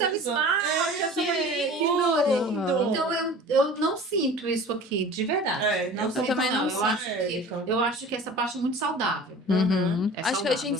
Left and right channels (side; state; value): both; normal; correlation 0.41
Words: valorizando. esmalte, essa que manicure. lindo! Então eu não sinto isso aqui, de verdade. Não eu sinto, também não não. sinto. Eu acho que essa parte é muito saudável. Uhum. É Acho que saudável. a gente